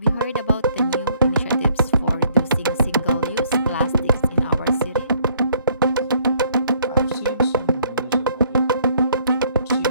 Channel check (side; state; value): both; inverted; correlation -0.64